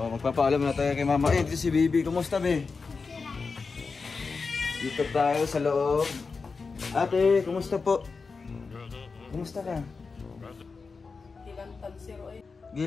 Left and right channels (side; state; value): right; quieter; 4.6 dB